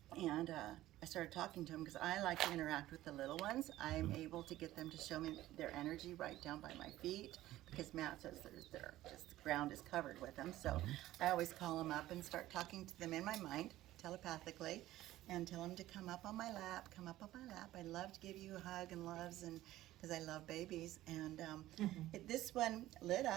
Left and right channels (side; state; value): left; quieter; 15.2 dB